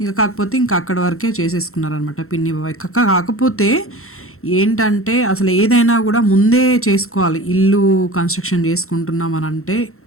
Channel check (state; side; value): late; right; 0.63 ms